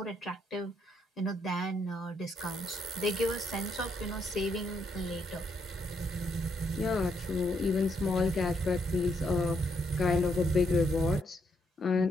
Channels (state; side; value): normal; both; correlation 0.76